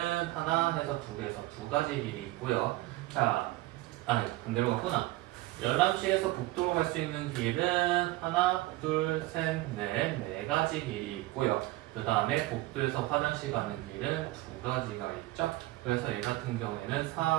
하나 해서 2개에서 2가지 길이 있고요. 자, 아니 반대로 갔구나. 열람실에서 복도로 갈 수 있는 길은 하나, 둘, 셋, 넷, 4가지 길이 있고요. 그 다음에 복도에서 화장실 가는 길은 2가지가 있죠. 그래서 얘 같은 경우에는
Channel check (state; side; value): quieter; left; 18.6 dB